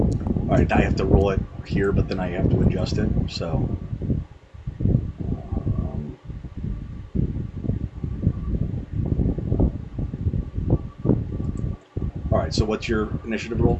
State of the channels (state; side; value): identical; both; correlation 1.00